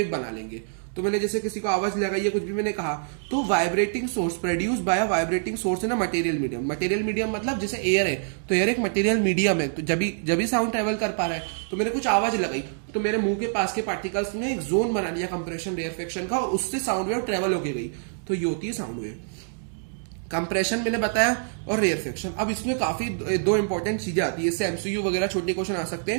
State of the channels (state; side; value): silent; left; digital silence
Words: बना लेंगे। तो मैंने जैसे किसी को आवाज लगाई है, कुछ भी मैंने कहा, तो vibrating source produce by vibrating source in a material medium. Material medium मतलब जैसे एयर है, तो एयर एक मटेरियल मीडियम है, तो जब भी साउंड ट्रेवल कर पा रहा है, तो मैंने कुछ आवाज लगाई, तो मेरे मुंह के पास के पार्टिकल्स ने एक जोन बना लिया कंप्रेशन रेयरफेक्शन का, और उससे साउंड वेव ट्रेवल होके गई, तो ये होती है साउंड वेव। कंप्रेशन मैंने बताया और रेयरफेक्शन। अब इसमें काफी दो इंपॉर्टेंट चीजें आती है, इससे एमसीक्यू वगैरह छोटे क्वेश्चन आ सकते